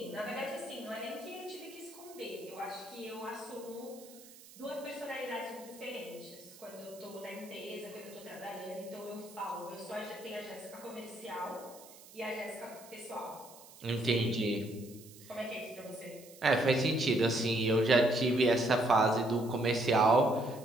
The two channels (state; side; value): noise; right; hiss, 20 dB below the sound